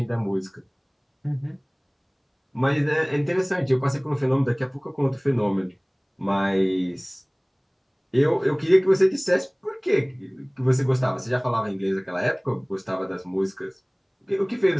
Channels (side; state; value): both; identical; correlation 1.00